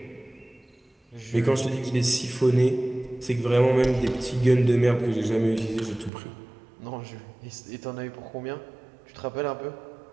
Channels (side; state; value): left; drops out; at 6.1 s